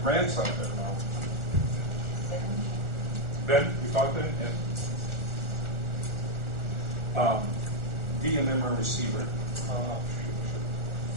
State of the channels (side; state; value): left; late; 1.4 ms